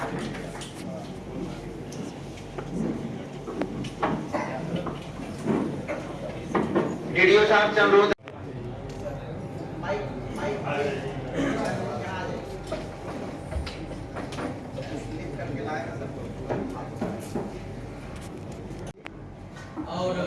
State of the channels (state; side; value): identical; both; correlation 1.00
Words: डीडीओ साहब से अनुरोध और